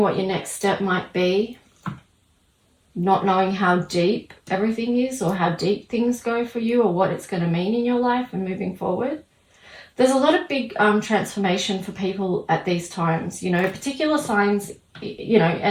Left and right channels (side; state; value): both; identical; correlation 1.00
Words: what your next step might be. Not knowing how deep everything is or how deep things go for you or what it's going to mean in your life and moving forward. There's a lot of big transformation for people at these times, you know, particular signs, you know,